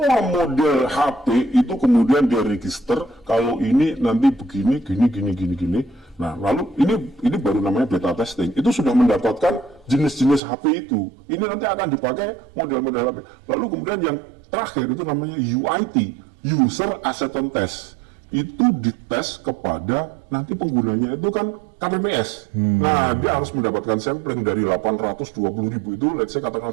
model HP itu kemudian dia register kalau ini nanti begini, gini. Nah, lalu ini baru namanya beta testing. Itu sudah mendapatkan jenis-jenis HP itu. Ini nanti akan dipakai model-model HP. Lalu kemudian yang terakhir itu namanya UIT, User Acceptance Test. Itu dites kepada nanti penggunanya itu kan KPPS. Nah, dia harus mendapatkan sampling dari 820.000 itu, let's say katakan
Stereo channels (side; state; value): left; drops out; at 10.4 s